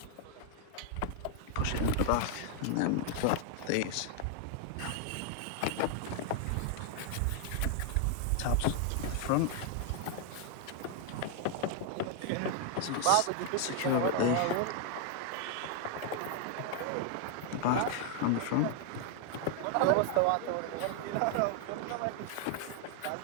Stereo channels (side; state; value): both; different; correlation 0.00